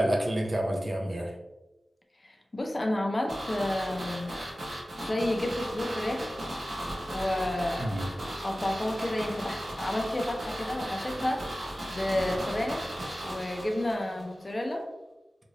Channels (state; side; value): normal; both; correlation 0.96